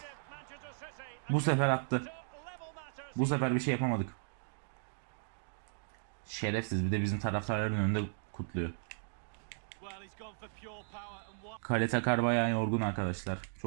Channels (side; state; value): left; silent; digital silence